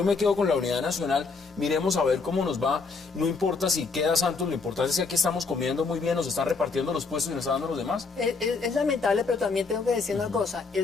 me quedo con la unidad nacional, miremos a ver cómo nos va, no importa si queda Santos, lo importante es que aquí estamos comiendo muy bien, nos están repartiendo los puestos y nos están dando los demás. Es lamentable, pero también tengo que decir una cosa,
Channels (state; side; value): quieter; right; 4.5 dB